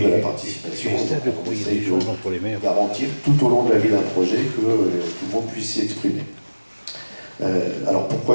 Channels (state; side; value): inverted; both; correlation -1.00